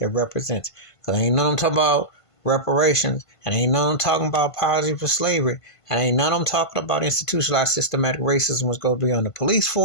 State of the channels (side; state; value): right; late; 1.5 ms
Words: represents. Because ain't none of them talking about reparations. And ain't none of them talking about apology for slavery. And ain't none of them talking about institutionalized systematic racism, which goes beyond the police